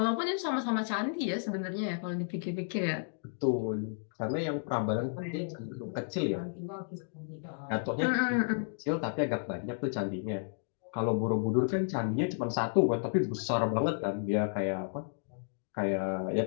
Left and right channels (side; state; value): right; silent; digital silence